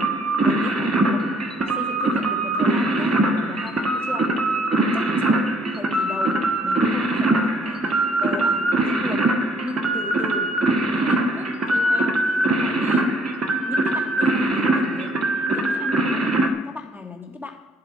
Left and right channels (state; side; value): normal; both; correlation 0.63